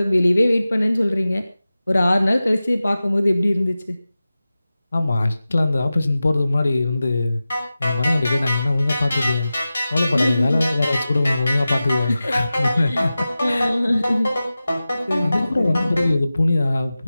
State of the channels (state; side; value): inverted; both; correlation -0.95